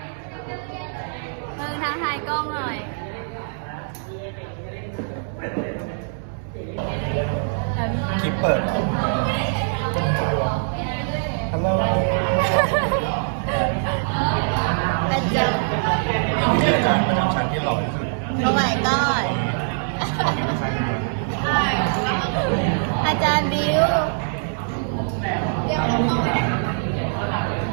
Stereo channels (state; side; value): silent; left; 63 dB below the other